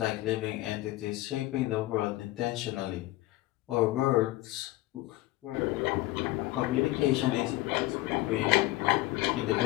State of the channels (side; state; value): right; quieter; 18.2 dB